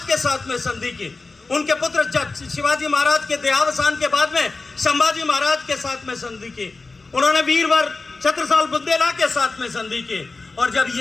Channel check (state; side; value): quieter; right; 3.7 dB